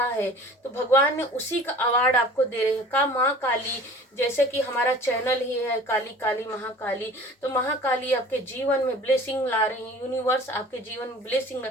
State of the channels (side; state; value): both; normal; correlation 0.45